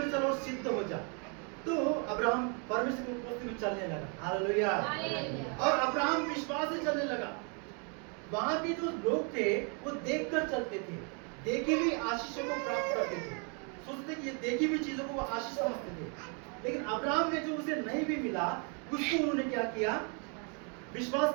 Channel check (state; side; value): quieter; left; 37.6 dB